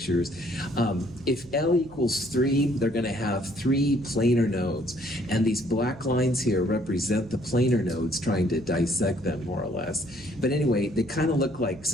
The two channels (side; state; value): right; noise; hum, 21 dB below the sound